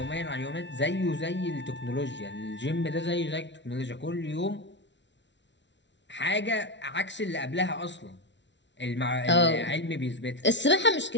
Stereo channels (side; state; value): right; late; 0.52 ms